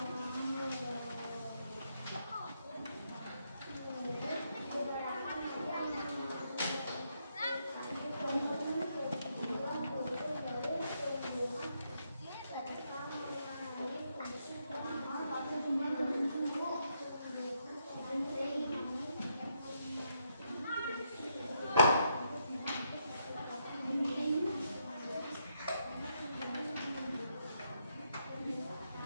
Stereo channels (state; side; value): inverted; both; correlation -0.78